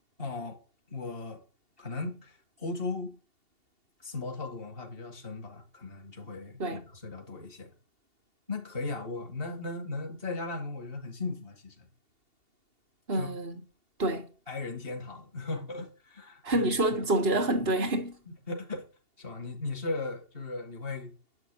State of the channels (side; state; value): left; late; 2.8 ms